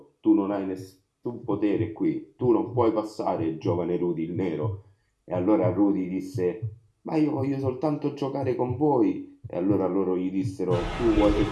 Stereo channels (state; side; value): identical; both; correlation 1.00